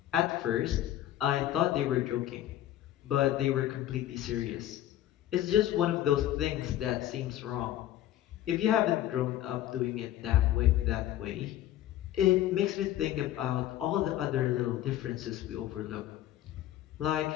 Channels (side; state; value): right; quieter; 13.0 dB